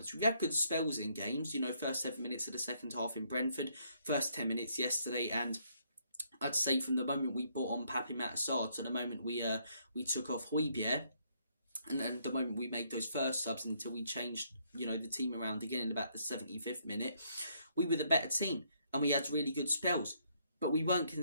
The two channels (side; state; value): both; inverted; correlation -0.70